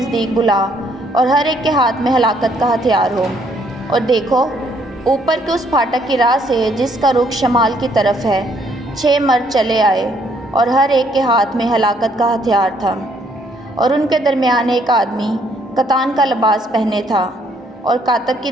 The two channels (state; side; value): normal; both; correlation 0.68